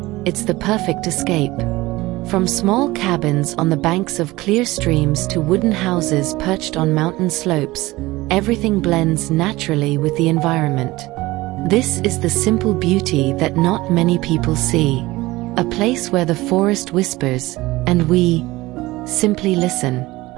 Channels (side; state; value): left; quieter; 19.5 dB